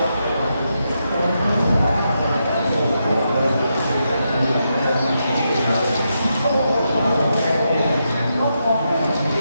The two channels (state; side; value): inverted; both; correlation -0.84